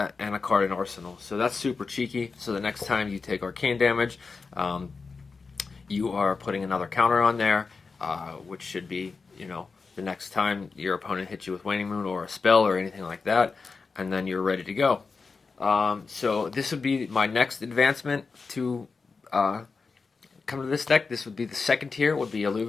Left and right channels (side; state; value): right; quieter; 4.6 dB